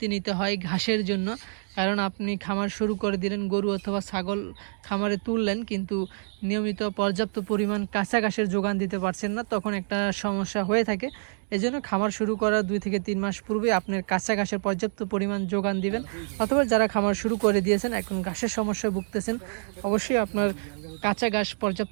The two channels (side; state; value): left; silent; digital silence